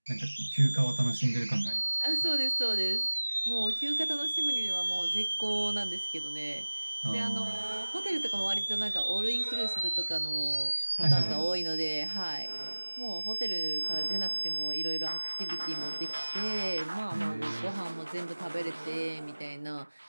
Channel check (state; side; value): inverted; both; correlation -1.00